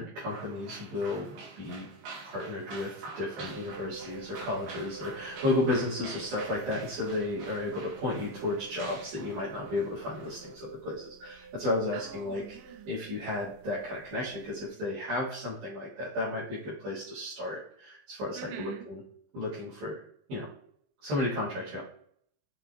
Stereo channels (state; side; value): late; left; 20 ms